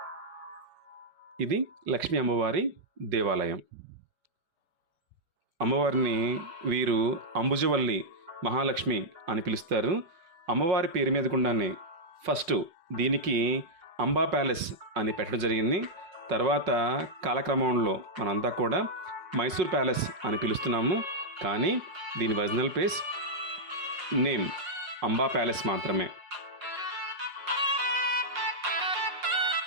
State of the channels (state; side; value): late; left; 5.5 ms